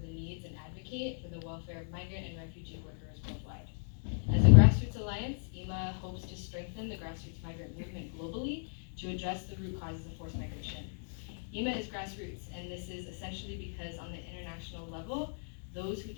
the needs and advocate for the welfare of migrant and refugee workers worldwide. As a grassroots alliance, IMA hopes to strengthen the grassroots migrant movement globally to address the root causes of forced migration. IMA is grassroots, and this is essentially because on the international level, those who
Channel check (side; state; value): right; silent; digital silence